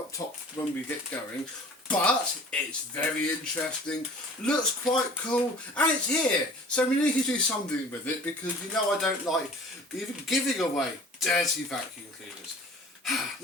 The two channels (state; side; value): normal; both; correlation 0.45